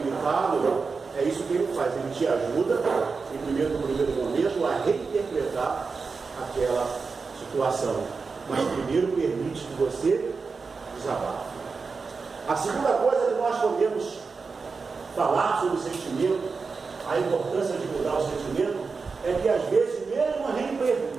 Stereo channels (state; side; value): quieter; left; 4.7 dB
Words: é isso que ele faz, ele te ajuda no primeiro momento a reinterpretar aquela situação, mas primeiro permite que você desabafe. A segunda coisa que nós podemos falar sobre o sentimento, a importância de mudar o sentimento, é que às vezes, mesmo